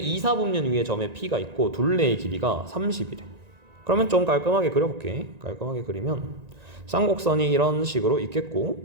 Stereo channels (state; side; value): late; left; 1.9 ms